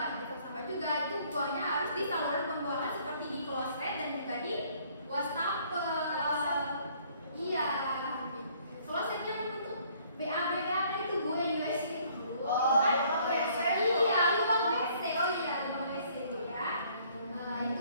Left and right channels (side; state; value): both; inverted; correlation -0.61